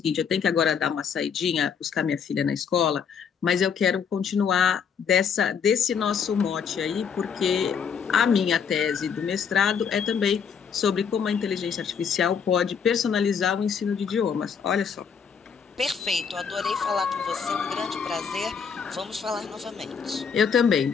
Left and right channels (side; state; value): right; quieter; 6.8 dB